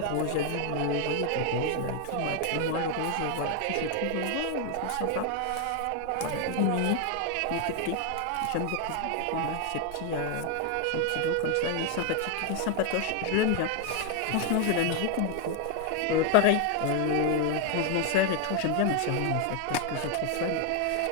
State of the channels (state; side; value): different; both; correlation 0.01